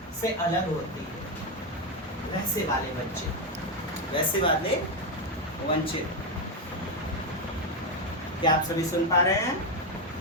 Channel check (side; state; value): both; normal; correlation 0.07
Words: से अलग होती है। वैसे वाले बच्चे, वैसे वाले वंचित। क्या आप सभी सुन पा रहे हैं?